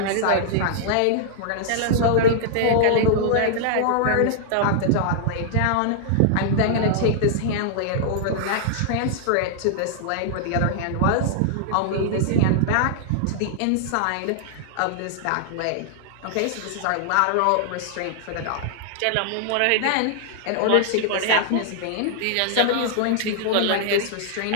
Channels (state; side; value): different; both; correlation -0.01